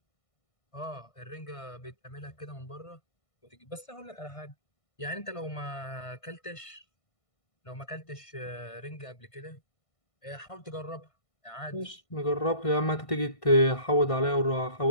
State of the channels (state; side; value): late; right; 1.5 ms